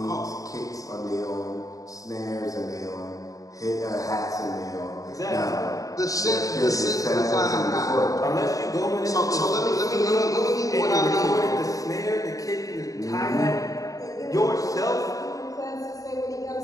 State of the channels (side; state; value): right; late; 0.17 ms